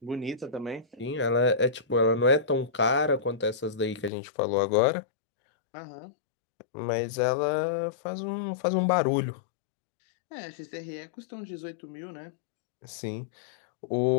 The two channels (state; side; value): drops out; right; at 4.1 s